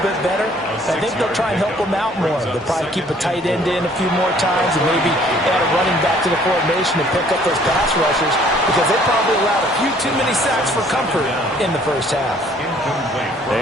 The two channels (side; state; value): both; normal; correlation 0.58